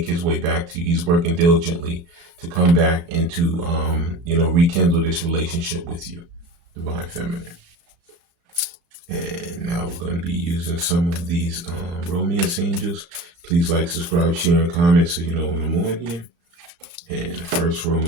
his way back to you. He's working diligently to come back and to, rekindle this relationship with you, Divine Feminine. And now we're going to be using some of these romance angels. Please like, subscribe, share, and comment so you know when I'm on here. And the first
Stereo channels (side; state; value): left; late; 36 ms